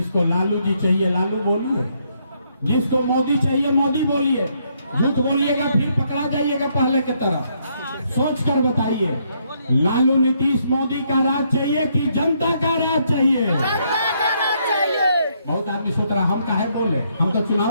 लालू जी चाहिए लालू बोलिए, जिसको मोदी चाहिए मोदी बोलिए। झूठ बोलिएगा फिर पकड़ा जाइएगा पहले की तरह। सोच कर बताइए, लालू नीतीश मोदी का राज चाहिए कि जनता का राज चाहिए? जनता का राज चाहिए। बहुत आदमी सोच रहा हम काहे बोले, हम तो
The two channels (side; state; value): both; inverted; correlation -0.73